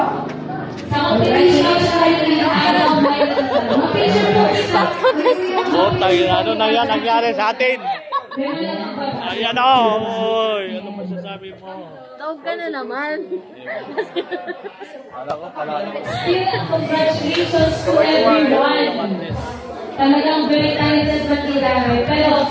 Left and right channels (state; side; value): identical; both; correlation 1.00